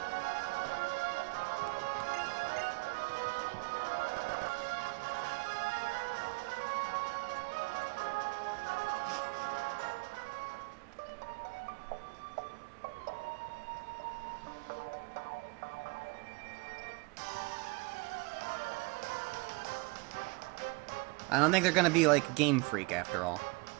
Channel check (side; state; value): left; quieter; 27.7 dB